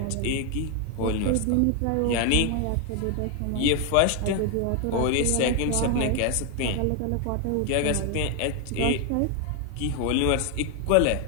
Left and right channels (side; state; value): both; different; correlation 0.01